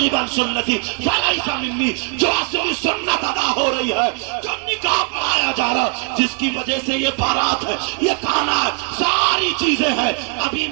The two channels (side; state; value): left; quieter; 37.0 dB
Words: عن سنتی فلیس منی. جو اصلی سنت ادا ہو رہی ہے, جو نکاح پڑھایا جا رہا, جس کی وجہ سے یہ بارات ہے, یہ کھانا ہے, ساری چیزیں ہیں. اب